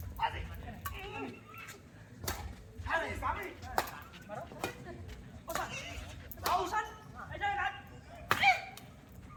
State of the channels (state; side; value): identical; both; correlation 1.00